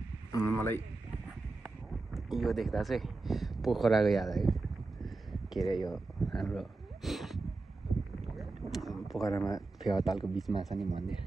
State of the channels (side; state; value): left; quieter; 3.4 dB